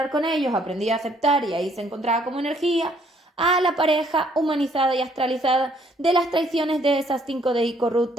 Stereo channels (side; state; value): both; normal; correlation 0.65